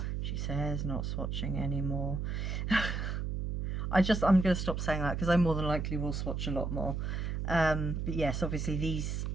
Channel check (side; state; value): right; noise; hum, 2 dB below the sound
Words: She says not swatching anymore. I'm going to stop saying that because I more than likely will swatch a lot more. But yes, obviously these